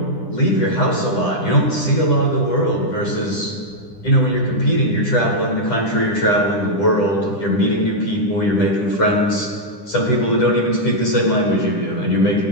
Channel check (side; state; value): right; late; 10 ms